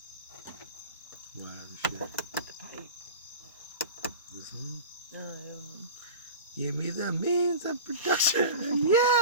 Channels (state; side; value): inverted; both; correlation -0.34